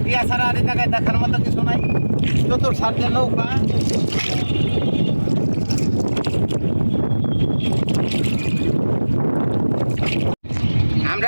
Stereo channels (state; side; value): inverted; both; correlation -1.00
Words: ইয়া ছাড়া আর এই জায়গায় দেখার মতো কিছু নাই। চতুর সার্জে নৌকা, আমরা